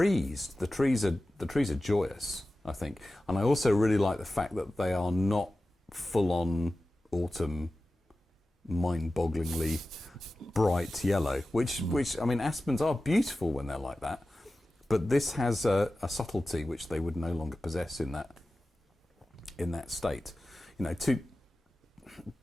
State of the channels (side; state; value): both; normal; correlation 0.95